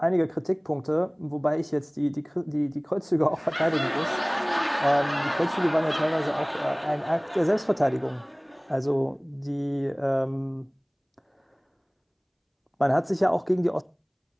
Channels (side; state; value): both; identical; correlation 1.00